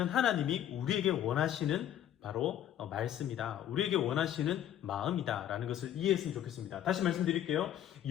하나님이 우리에게 원하시는 바로 말씀이다. 우리에게 원하시는 마음이다. 라는 것을 이해했으면 좋겠습니다. 다시 말씀드릴게요.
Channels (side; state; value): right; quieter; 11.1 dB